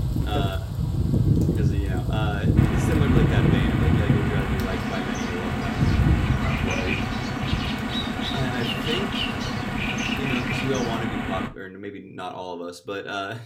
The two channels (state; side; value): identical; both; correlation 1.00